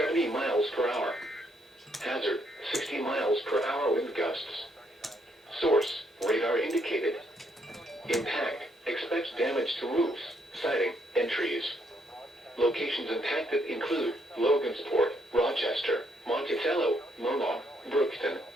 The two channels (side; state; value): both; normal; correlation 0.73